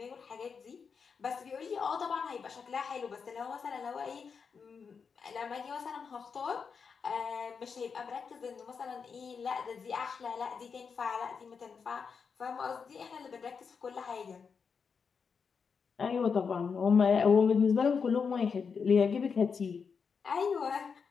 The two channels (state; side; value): quieter; right; 5.8 dB